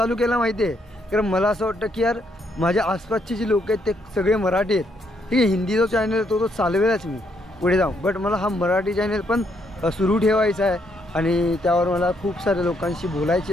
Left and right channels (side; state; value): both; normal; correlation 0.74